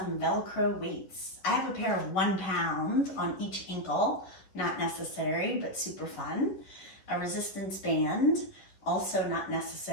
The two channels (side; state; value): right; late; 11 ms